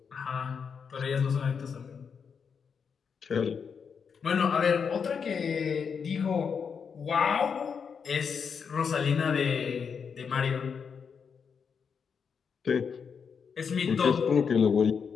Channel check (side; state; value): right; quieter; 6.3 dB